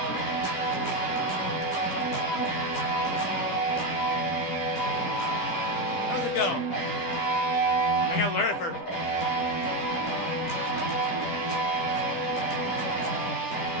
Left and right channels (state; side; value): late; right; 10 ms